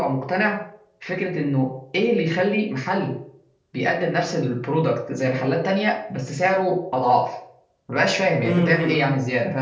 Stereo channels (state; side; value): identical; both; correlation 1.00